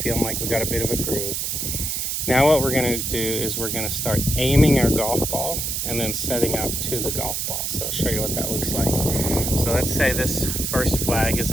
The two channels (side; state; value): right; noise; hiss, 1 dB below the sound